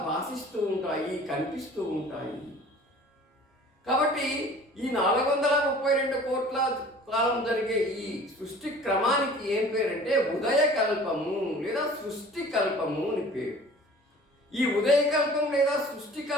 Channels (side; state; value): both; normal; correlation 0.46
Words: భాషిస్తూ ఉంటాయి, కనిపిస్తూ ఉంటాయి. కాబట్టి ఈ 432 కోట్ల కాలం జరిగే ఈ సృష్టి క్రమానికి ఏం పేరంటే ఉదయకల్పము లేదా సృష్టి కల్పము అని పేరు. ఈ ఉదయకల్పం లేదా సృష్టి